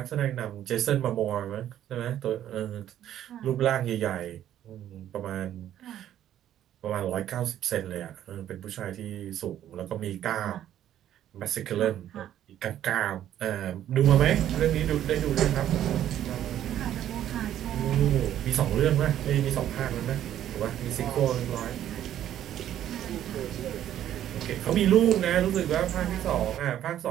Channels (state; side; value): quieter; left; 11.4 dB